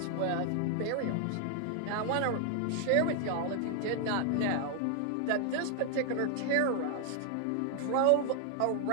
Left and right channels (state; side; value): different; both; correlation 0.00